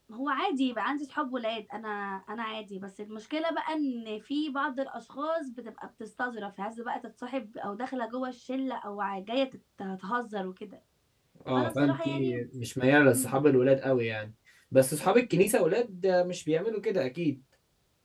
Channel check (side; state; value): both; identical; correlation 1.00